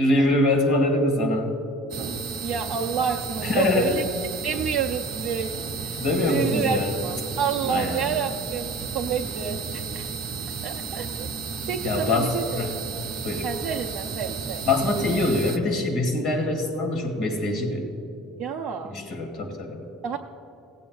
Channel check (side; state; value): both; normal; correlation 0.43